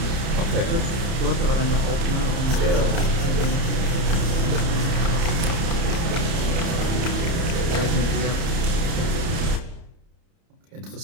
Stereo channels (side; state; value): left; late; 30 ms